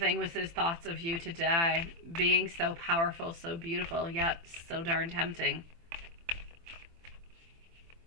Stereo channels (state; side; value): late; left; 24 ms